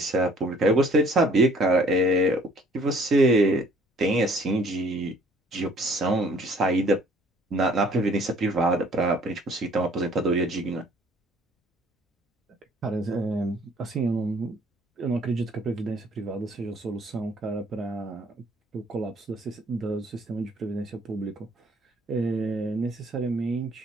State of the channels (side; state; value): both; normal; correlation 0.58